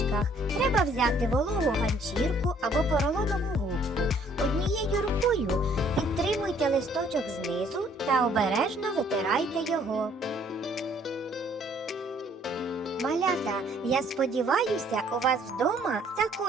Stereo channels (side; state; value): both; normal; correlation 0.61